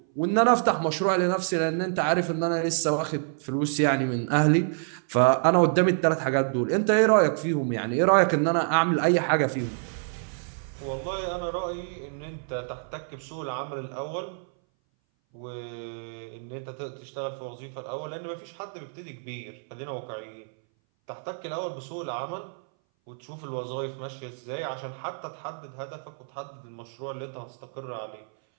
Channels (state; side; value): silent; left; 59 dB below the other